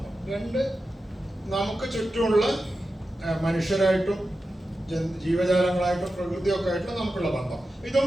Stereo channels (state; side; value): normal; both; correlation 0.91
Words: 2, നമുക്ക് ചുറ്റുമുള്ള മനുഷ്യരായിട്ടും ജീവജാലങ്ങളായിട്ടും പ്രകൃതിയൊക്കെ ആയിട്ടുള്ള നമുക്കുള്ള ബന്ധം. ഇതും